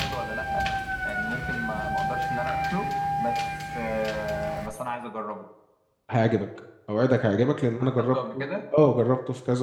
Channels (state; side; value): identical; both; correlation 1.00